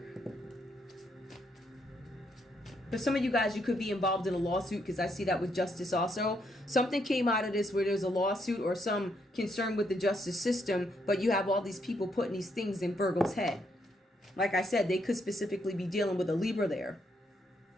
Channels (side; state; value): both; normal; correlation 0.75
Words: For some of you guys, you could be involved in a lawsuit, because I see that with justice also. Something came out of this where there's a lawsuit or some concern with the justice system, but you have all these people putting these things in Virgo's head. Like I said, they could specifically be dealing with a Libra there.